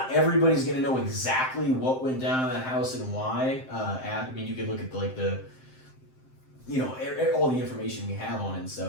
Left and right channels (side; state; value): right; late; 7.7 ms